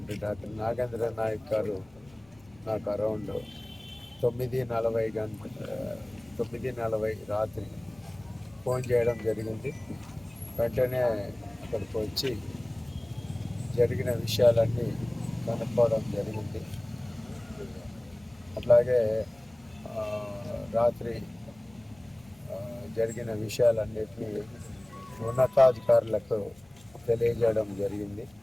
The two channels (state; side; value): noise; left; rumble, 28 dB below the sound